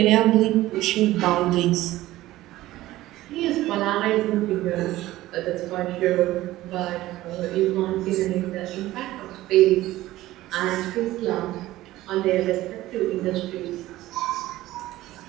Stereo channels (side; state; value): left; quieter; 16.2 dB